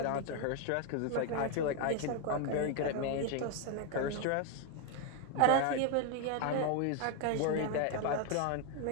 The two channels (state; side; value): different; both; correlation 0.01